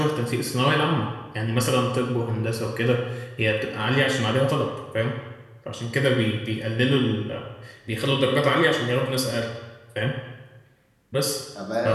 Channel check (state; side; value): identical; both; correlation 1.00